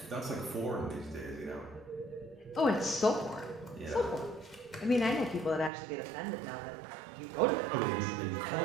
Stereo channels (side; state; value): left; drops out; at 5.7 s